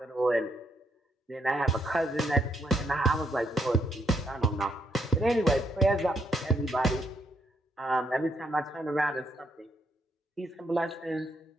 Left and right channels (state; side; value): normal; both; correlation 0.74